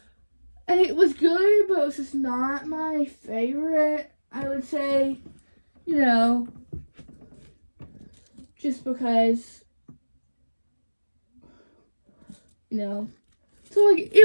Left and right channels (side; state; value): both; inverted; correlation -1.00